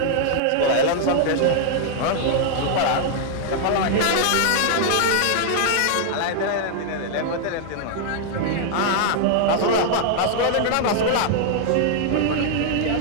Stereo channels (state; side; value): different; both; correlation -0.01